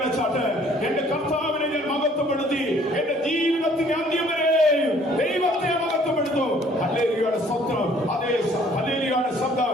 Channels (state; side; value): normal; both; correlation 0.58